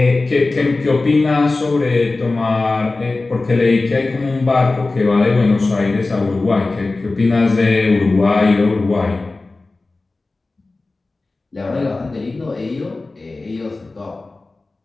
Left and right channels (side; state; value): right; quieter; 3.4 dB